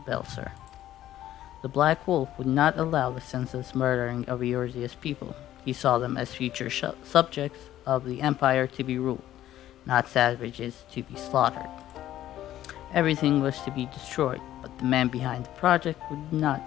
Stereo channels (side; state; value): right; quieter; 13.0 dB